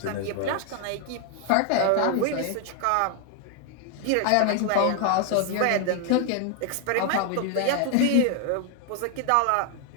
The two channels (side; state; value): both; different; correlation 0.00